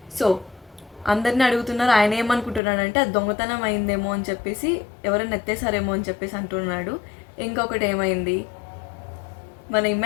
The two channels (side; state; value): right; drops out; at 2.6 s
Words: సో అందరిని అడుగుతున్నారు. ఆయన ఏమనుకుంటున్నాడంటే అది దొంగతనం అయిందేమో అని చెప్పేసి, ఎవరైనా ఎత్తేసారేమో అని చెప్పేసి అంటున్నాడు. ఇంకొకటి ఏమైంది, మన